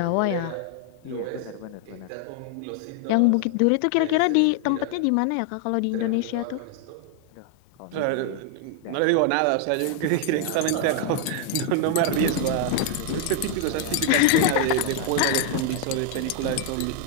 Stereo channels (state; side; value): different; both; correlation 0.00